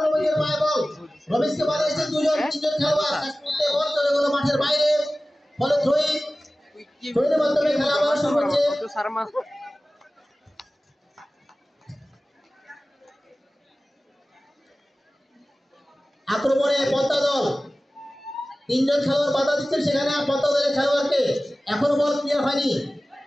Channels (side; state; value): both; normal; correlation 0.97